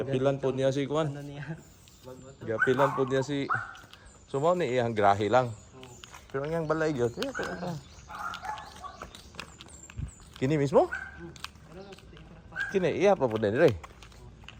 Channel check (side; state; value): both; identical; correlation 1.00